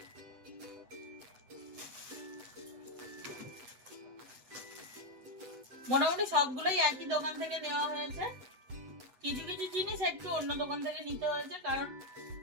মোটামুটি সবগুলোই একই দোকান থেকে নেওয়া হয়েছে, কিছু কিছু জিনিস একটু অন্য দোকান থেকে নিতে হয়েছে, কারণ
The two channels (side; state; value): left; late; 8.1 ms